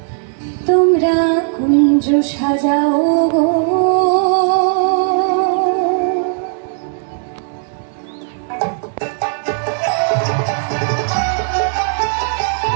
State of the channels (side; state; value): left; silent; 69 dB below the other